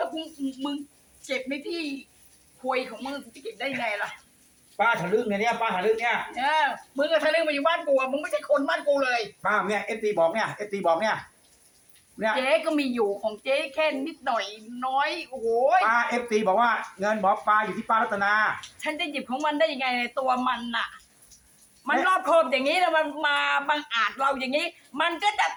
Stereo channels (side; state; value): both; identical; correlation 1.00